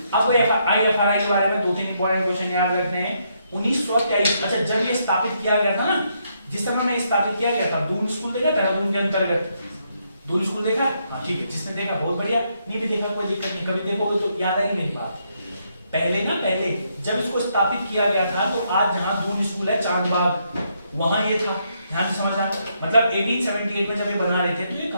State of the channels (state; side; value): inverted; both; correlation -0.76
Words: अब IFRI के बारे में 2-3 इंपॉर्टेंट क्वेश्चन याद रखने हैं। 1923, अच्छा जब ये स्थापित किया गया था ना, जिस समय में स्थापित किया गया था, दून स्कूल देखा देहरादून के अंतर्गत, दून स्कूल देखा, हाँ ठीक है, जिसने देखा बहुत बढ़िया, नहीं भी देखा कोई दिक्कत नहीं, कभी देखोगे तो याद आएगी मेरी बात। पहले जब इसको स्थापित किया गया था तो आज जहां दून स्कूल है चांदबाग, वहां ये था। ध्यान से समझना, मतलब 1878 में जब ये बना रहे थे तो ये